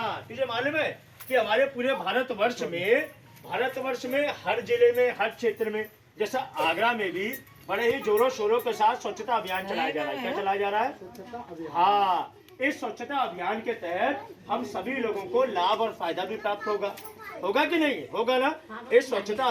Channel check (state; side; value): identical; both; correlation 1.00